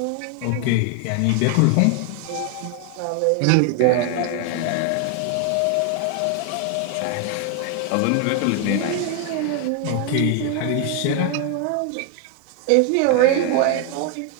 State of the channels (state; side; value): different; both; correlation 0.01